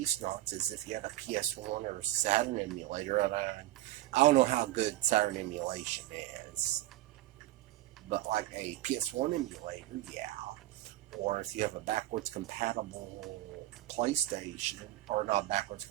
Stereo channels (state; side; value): quieter; left; 15.6 dB